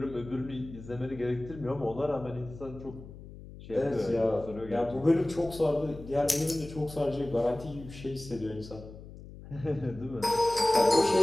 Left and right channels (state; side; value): noise; left; hum, 15 dB below the sound